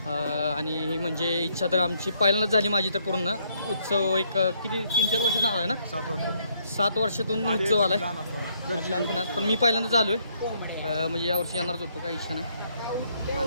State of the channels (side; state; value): both; inverted; correlation -0.71